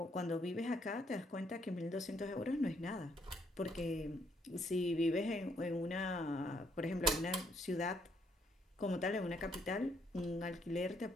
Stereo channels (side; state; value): both; normal; correlation 0.71